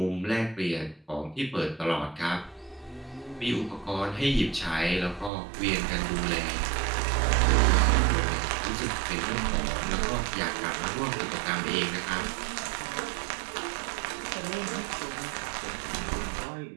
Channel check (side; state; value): left; drops out; at 5.3 s